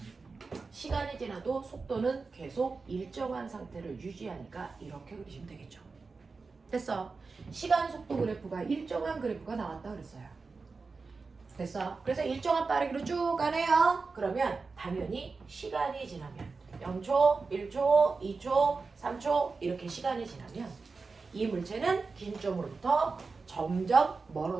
시간이 지나도 속도는 계속 일정한 상태를 유지하니까 이렇게 그리시면 되겠죠. 됐어. 시간 속도 그래프가 일정한 그래프가 나왔다 그랬어요. 됐어. 그래서 일정한 빠르기로 쭉 가네요. 그러면 당연히 시간이 지나면 0초, 1초, 2초, 3초 이렇게 시간이 지나면 이 물체는 긴 점으로부터 점점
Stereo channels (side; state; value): left; quieter; 4.3 dB